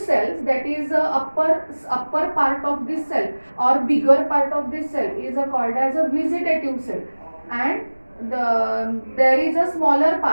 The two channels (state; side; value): inverted; both; correlation -1.00